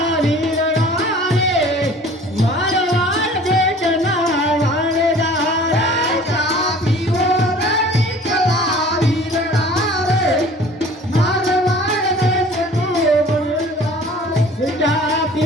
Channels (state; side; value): normal; both; correlation 0.47